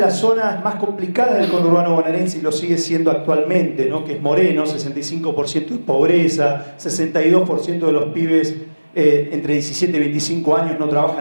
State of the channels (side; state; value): both; inverted; correlation -1.00